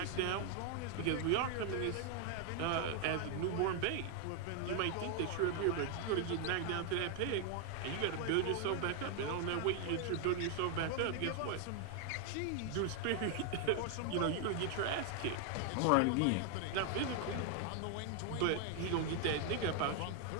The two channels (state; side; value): different; both; correlation 0.00